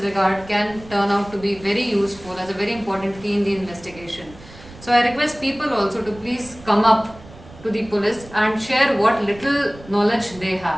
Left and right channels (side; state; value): right; noise; rumble, 20 dB below the sound